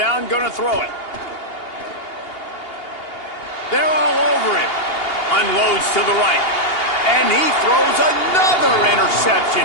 gonna throw it. They're all over him. Unloads to the right. And he throws another interception.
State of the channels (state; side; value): late; right; 2.8 ms